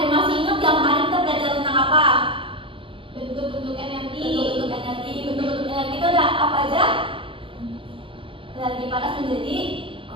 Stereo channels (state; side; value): late; left; 0.25 ms